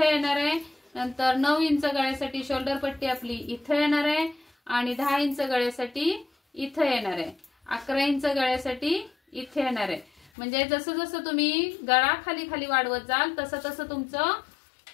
येणार आहे. नंतर 9 इंच गळ्यासाठी शोल्डर पट्टी आपली इथे येणार आहे आणि 10 इंच गळ्यासाठी इथे येणार आहे. 11 इंच गळ्यासाठी इथे येणार आहे. म्हणजे जसं जसं तुम्ही गळा खाली खाली वाढवत जाल तसं तसं तुमचं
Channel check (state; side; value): drops out; right; at 10.3 s